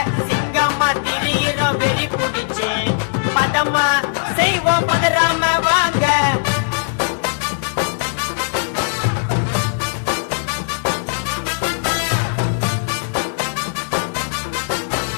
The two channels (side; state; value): right; silent; 66 dB below the other